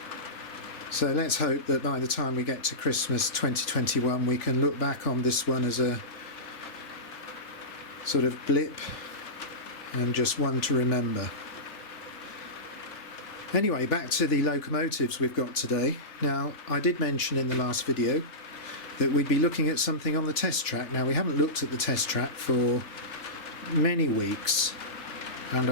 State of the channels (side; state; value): right; late; 3.2 ms